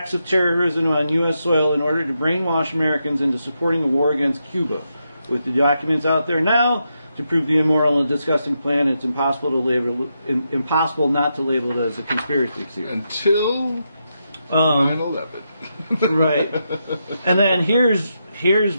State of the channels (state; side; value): inverted; both; correlation -0.84